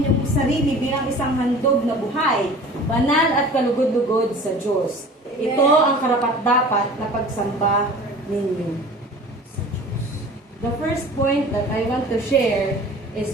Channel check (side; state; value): both; normal; correlation 0.43